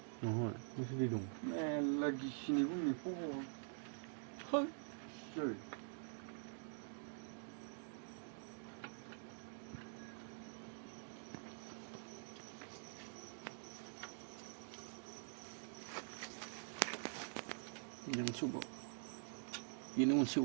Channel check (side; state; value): left; silent; digital silence